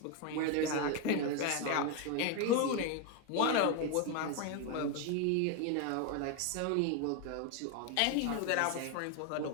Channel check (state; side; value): different; both; correlation 0.01